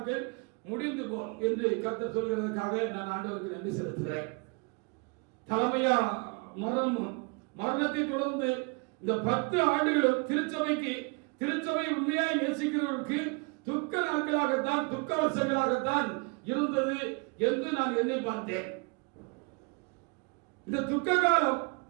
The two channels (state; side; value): quieter; left; 31.3 dB